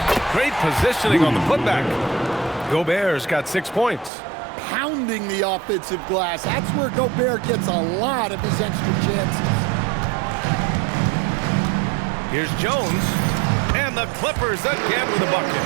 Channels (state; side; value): drops out; left; at 4.1 s